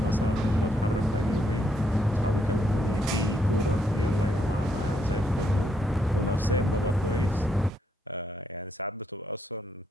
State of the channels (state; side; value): normal; both; correlation 0.76